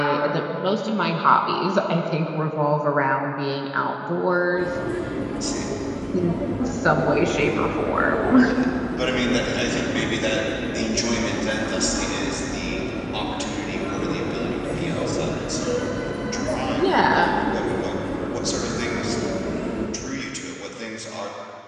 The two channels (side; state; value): both; identical; correlation 1.00